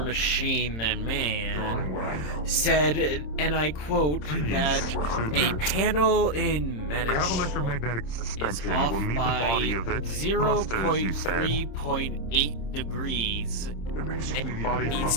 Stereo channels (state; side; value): late; right; 27 ms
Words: than man said, and I quote, that a panel in We have medical electromagnetic is suspension. off We'll need the by body of it. Thrusters, you said. 0.3.8 degrees and Body needs